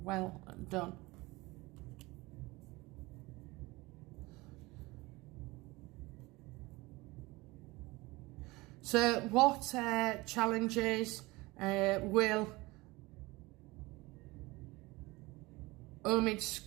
done. So what challenges will Omid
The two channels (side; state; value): left; quieter; 22.3 dB